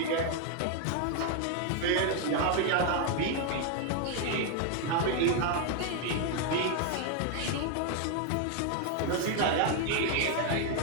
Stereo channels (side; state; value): both; different; correlation 0.00